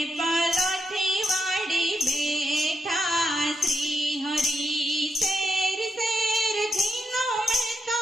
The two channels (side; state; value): both; normal; correlation 0.83